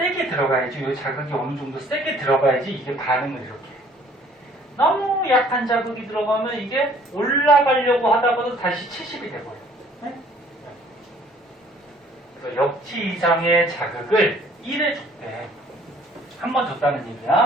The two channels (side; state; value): both; normal; correlation 0.57